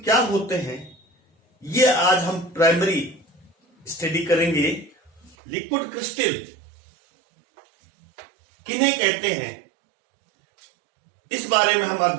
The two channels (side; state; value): left; drops out; at 5.4 s